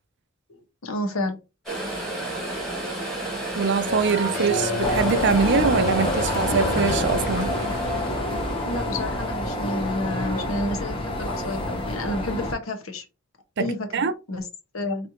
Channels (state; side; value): normal; both; correlation 0.16